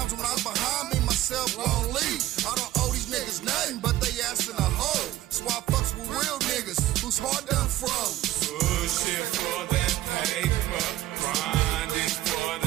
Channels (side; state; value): left; quieter; 15.1 dB